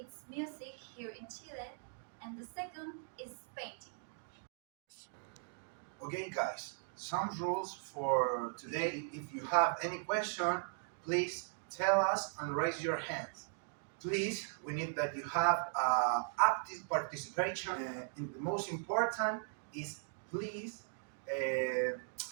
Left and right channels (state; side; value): silent; left; digital silence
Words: music here in Chile, and the second is painting. Okay, guys, some rules for today. If you have any question, please tell us and raise your hands. Please, we need that you have active participation. And the most important is please